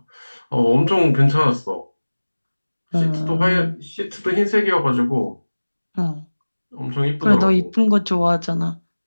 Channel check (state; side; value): inverted; both; correlation -1.00